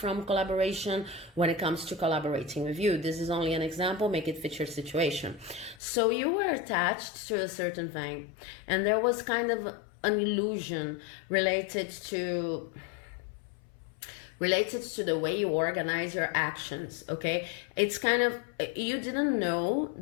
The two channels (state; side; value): drops out; right; at 5.8 s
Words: collaboration when it comes to collaborating with you. This is only an example, make it fit your situation. So you were attached to a certain thing, and there was kind of an illusion related to the way you organize your actions. Okay, it's kind of, you didn't know